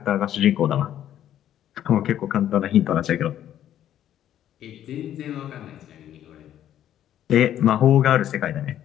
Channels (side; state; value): right; quieter; 11.3 dB